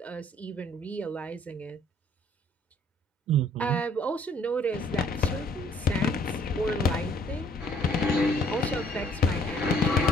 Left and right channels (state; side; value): normal; both; correlation 0.60